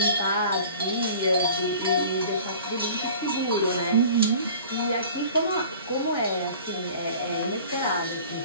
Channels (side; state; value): both; inverted; correlation -0.45